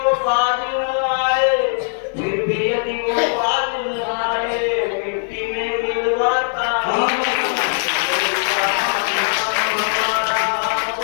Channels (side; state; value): right; silent; digital silence